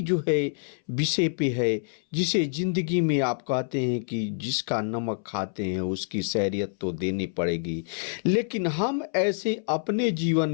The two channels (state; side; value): silent; right; 60 dB below the other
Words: जो है विषय पे है जिसे ज़िंदगी में आप कहते हैं कि जिसका नमक खाते हैं उसकी सैरियत तो देनी पड़ेगी, लेकिन हम ऐसे अपने जीवन